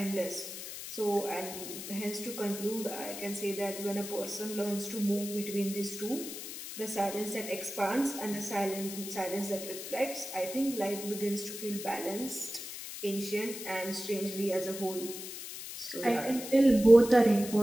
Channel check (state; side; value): noise; left; hiss, 9 dB below the sound